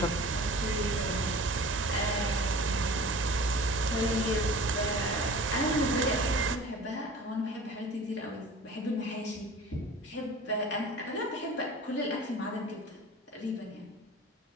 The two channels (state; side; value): normal; both; correlation 0.41